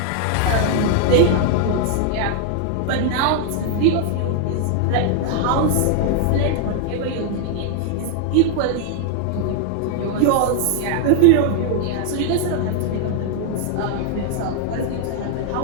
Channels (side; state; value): both; different; correlation 0.00